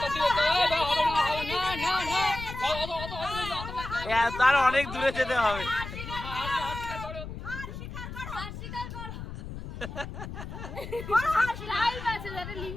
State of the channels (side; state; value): left; noise; rumble, 9 dB below the sound